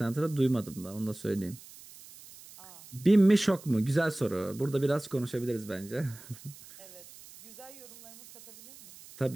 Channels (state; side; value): noise; right; hiss, 19 dB below the sound